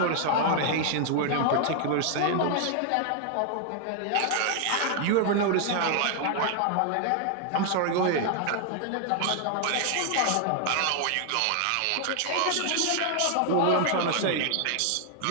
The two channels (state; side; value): different; both; correlation 0.00